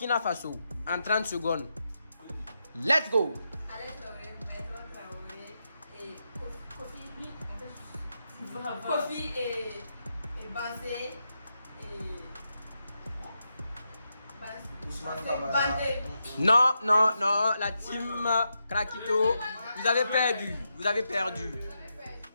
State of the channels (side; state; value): both; inverted; correlation -0.85